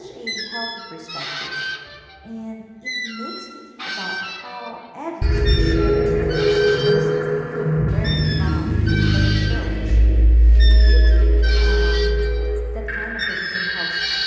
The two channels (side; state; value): both; identical; correlation 1.00